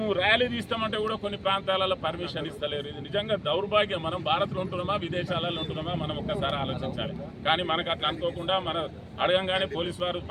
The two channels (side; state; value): both; identical; correlation 1.00